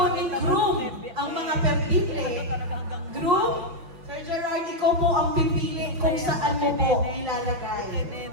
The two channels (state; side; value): late; left; 5.8 ms